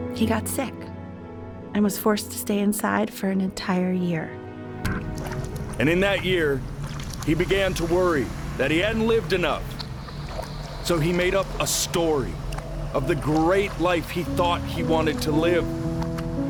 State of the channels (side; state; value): both; identical; correlation 1.00